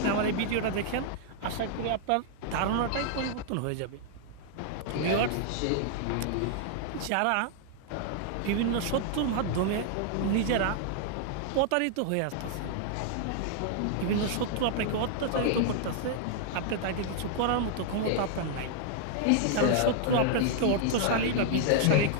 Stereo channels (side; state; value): both; different; correlation 0.00